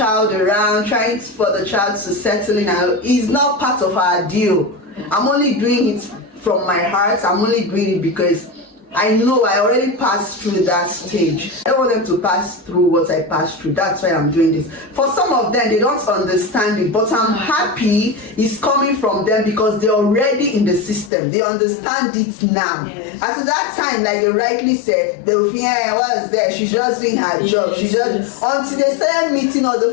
around, trying for the child to settle in is not part of our deal. I'm only doing it from my heart. I'm only doing it because I know I already passed through that stage. I don't want them to pass through what I passed through. That's why I'm doing this. For some of them, they don't understand it, but I'm happy it's coming from them because they're already in the system. They understand it now. Yes. At that time, like they rightly said, they will think, hey, what was there? She's just doing her job. She just until they started meeting other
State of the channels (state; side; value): drops out; right; at 21.1 s